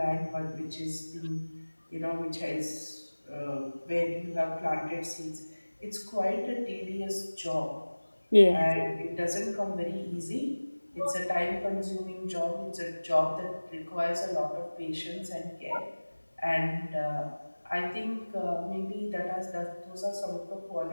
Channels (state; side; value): inverted; both; correlation -1.00